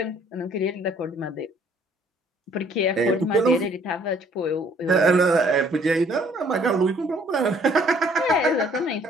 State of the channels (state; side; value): normal; both; correlation 0.60